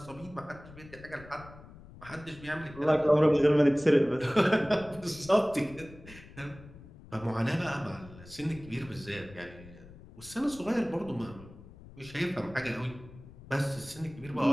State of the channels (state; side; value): noise; left; rumble, 19 dB below the sound